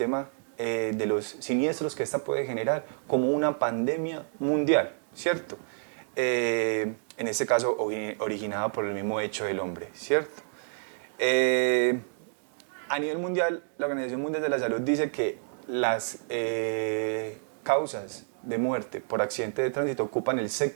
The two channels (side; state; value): left; silent; digital silence